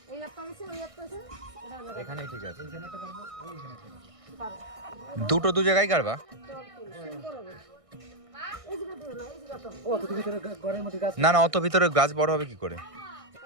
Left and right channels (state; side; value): late; left; 1.6 ms